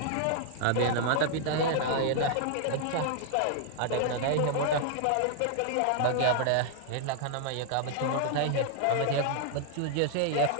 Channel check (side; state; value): both; different; correlation -0.01